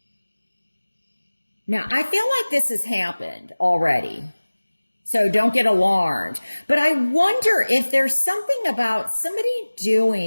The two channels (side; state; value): both; inverted; correlation -1.00